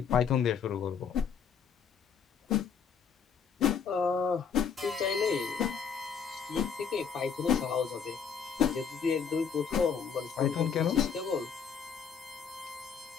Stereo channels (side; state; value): right; quieter; 6.7 dB